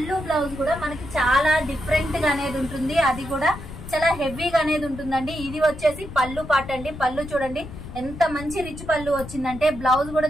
బ్లౌజ్ కూడా మనకి చాలా డిఫరెంట్ గా అనేది ఉంటుంది. అది కూడా చాలా హెవీగా అనేది ఉంటుందండి. ఇది వచ్చేసి పళ్ళు పాట అండి. పళ్ళు చూడండి ఎంత మంచి రిచ్ పళ్ళు వచ్చిందంటే, బ్లౌజ్ కూడా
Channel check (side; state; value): left; noise; rumble, 12 dB below the sound